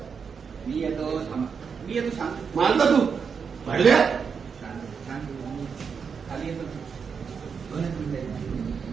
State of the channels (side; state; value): left; quieter; 6.1 dB